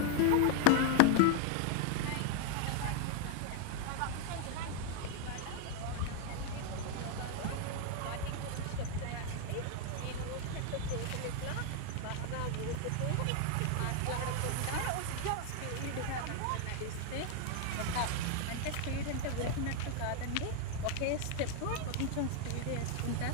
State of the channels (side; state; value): both; different; correlation 0.00